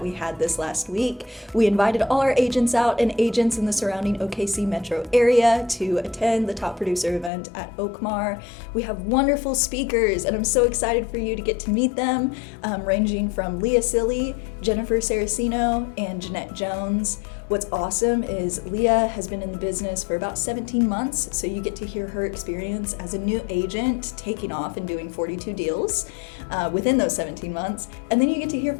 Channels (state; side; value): drops out; right; at 7.3 s